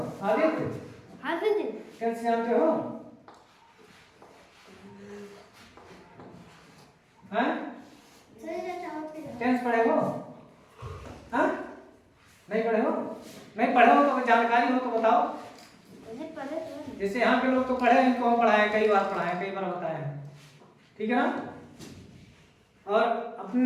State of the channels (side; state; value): both; identical; correlation 1.00